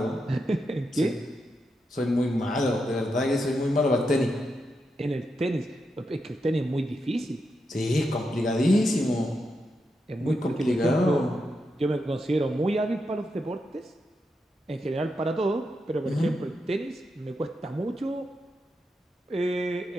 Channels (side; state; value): both; normal; correlation 0.85